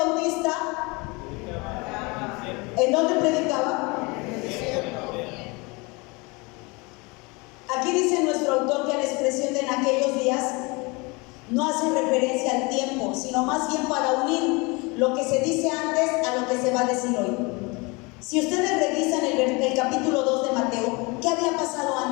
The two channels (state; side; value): quieter; right; 27.1 dB